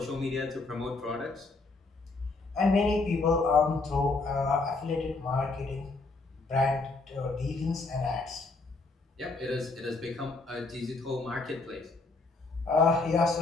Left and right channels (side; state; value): right; quieter; 3.6 dB